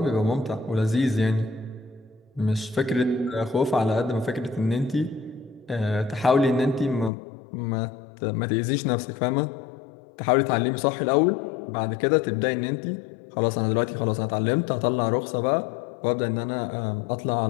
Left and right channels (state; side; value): drops out; right; at 7.1 s